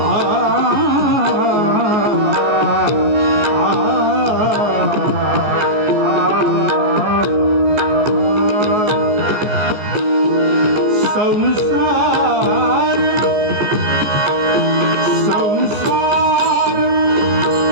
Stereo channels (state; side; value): late; left; 14 ms